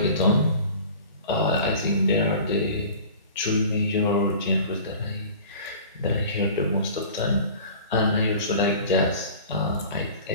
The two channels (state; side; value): inverted; both; correlation -0.42